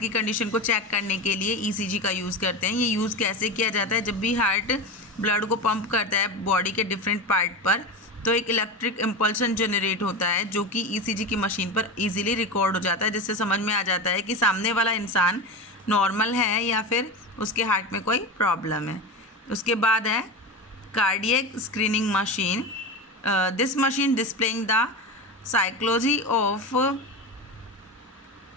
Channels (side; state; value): both; normal; correlation 0.22